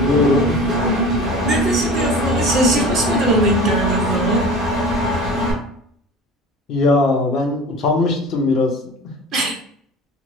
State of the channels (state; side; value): normal; both; correlation 0.37